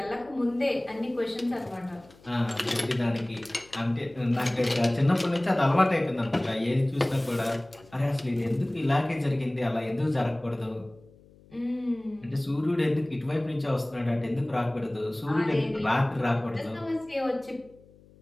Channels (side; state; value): left; noise; hum, 26 dB below the sound